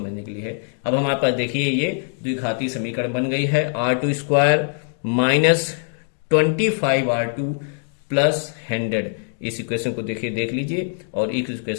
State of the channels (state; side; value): silent; right; 64 dB below the other